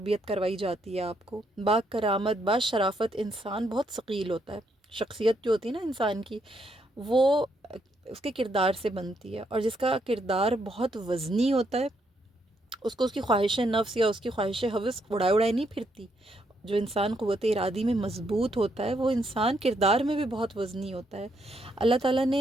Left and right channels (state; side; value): normal; both; correlation 0.75